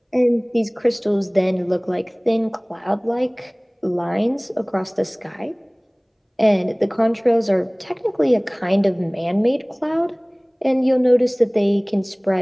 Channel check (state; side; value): identical; both; correlation 1.00